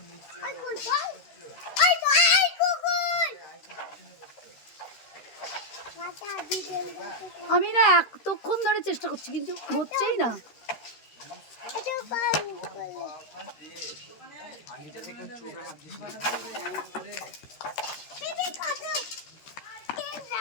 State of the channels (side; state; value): right; late; 13 ms